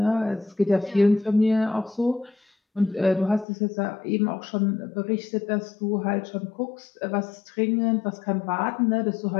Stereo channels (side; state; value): right; drops out; at 3.5 s